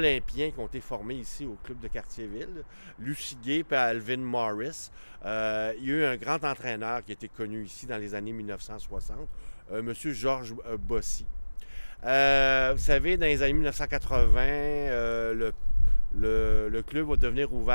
qui ont été formés ici au club de Cartierville, Lucy Gay et Alvin Morris. Il y a eu un grand entraîneur qui a été connu ici dans les années 1960, M. Georges Bossy. Vous savez, dans les années 1980, le club va devenir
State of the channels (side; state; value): both; inverted; correlation -1.00